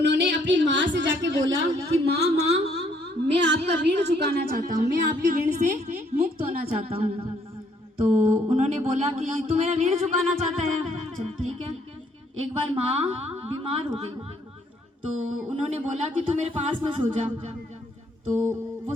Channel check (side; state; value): both; normal; correlation 0.67